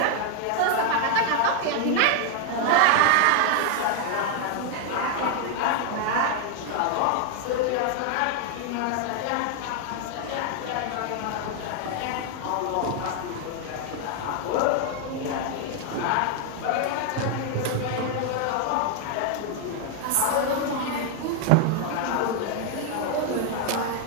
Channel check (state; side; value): different; both; correlation 0.00